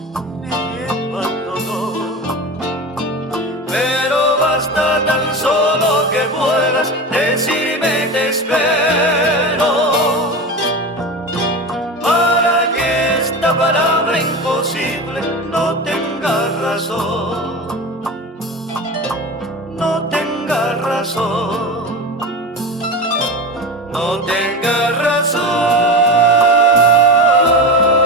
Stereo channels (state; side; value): normal; both; correlation 0.26